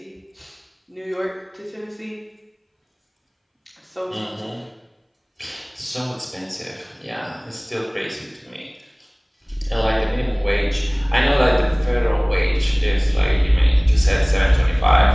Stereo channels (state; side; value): identical; both; correlation 1.00